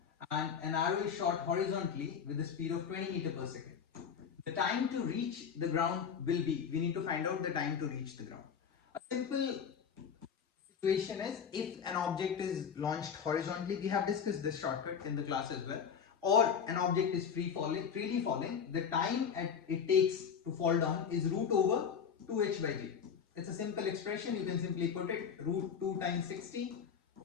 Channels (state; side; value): quieter; right; 7.1 dB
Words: and an arrow is shot horizontally with a speed of 20 meter per second. The time to reach the ground will be, we need to find out the time to reach the ground. A simple situation is, if an object is launched horizontally, we have discussed this shortcut in the class as well, or an object is freely falling, the time it takes to fall down is root over 2h by g. It's a simple expression, you can simply put it root 2 times 60